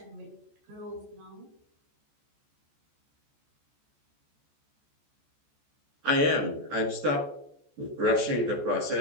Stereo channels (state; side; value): late; left; 14 ms